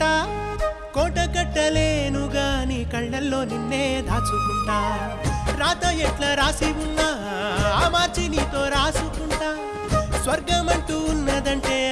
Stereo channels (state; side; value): identical; both; correlation 1.00